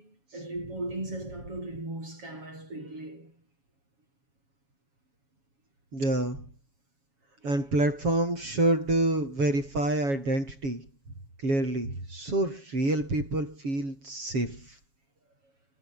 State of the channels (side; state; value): left; late; 7.2 ms